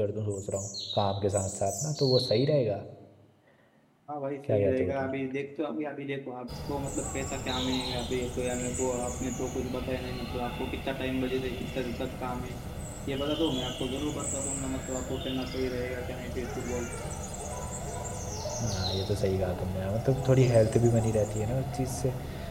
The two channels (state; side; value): identical; both; correlation 1.00